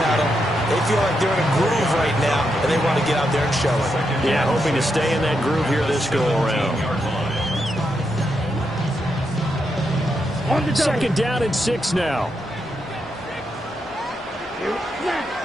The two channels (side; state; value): both; normal; correlation 0.83